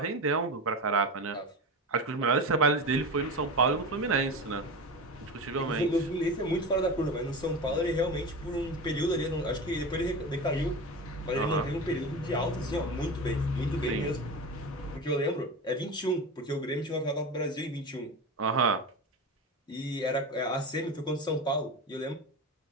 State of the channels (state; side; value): normal; both; correlation 0.25